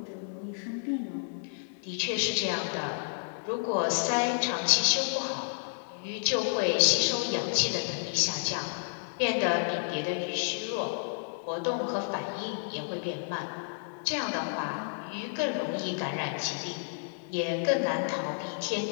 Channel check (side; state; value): right; silent; digital silence